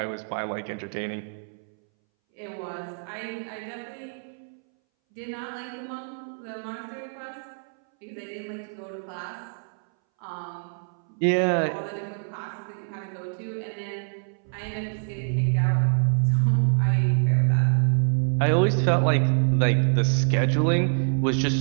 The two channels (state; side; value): silent; left; 61 dB below the other